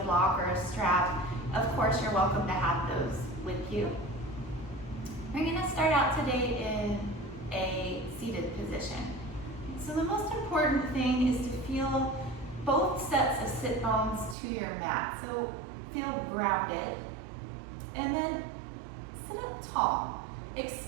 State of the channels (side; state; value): left; drops out; at 14.4 s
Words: block, or a strap, of course you're welcome to have those with you. We're going to start out today in a seated position. So the most important thing is to feel both sets of sit bones to your mat. So feel grounded. And then sit up tall.